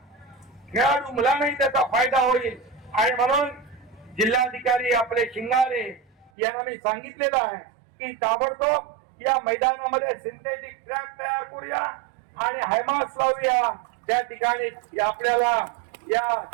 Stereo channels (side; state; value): left; drops out; at 6.3 s